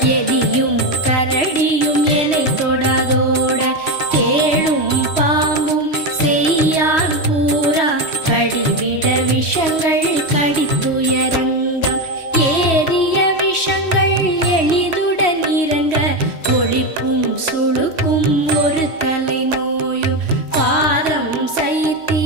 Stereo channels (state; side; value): late; right; 3.1 ms